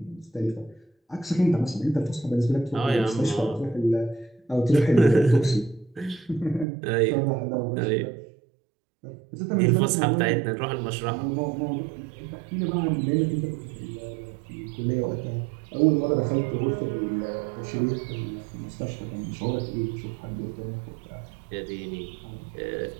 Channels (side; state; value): left; drops out; at 6.7 s